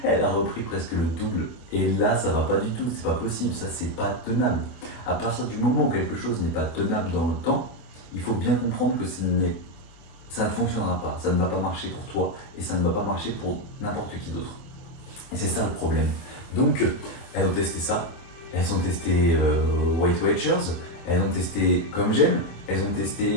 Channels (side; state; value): right; late; 24 ms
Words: elle a repris presque le double. Et là, ça va pas du tout, c'est pas possible, ça c'est pas tenable. À partir du moment où quelque chose n'est pas tenable dans le temps, il faut bien comprendre que ça ne fonctionnera pas, ça ne va pas marcher pour toi et ça ne va pas marcher pour n'importe qui d'autre. Et c'est ça le problème. Donc, elles ont testé ça, elles ont testé Weight Watchers, elles ont testé Comme J'aime, elles ont